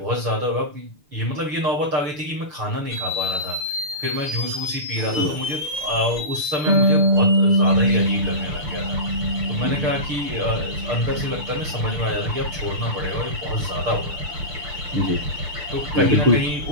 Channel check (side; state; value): left; late; 6.8 ms